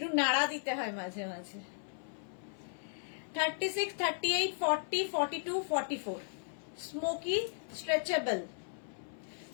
নাড়া দিতে হয় মাঝে মাঝে। 36, 38, 40, 42, 44 স্মোকি স্ট্রেচেবল।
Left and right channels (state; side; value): silent; right; 54 dB below the other